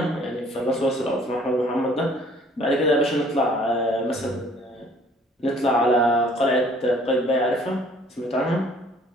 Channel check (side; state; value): both; normal; correlation 0.57